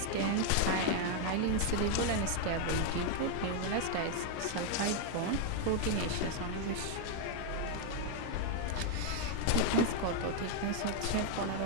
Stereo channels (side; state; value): both; different; correlation 0.00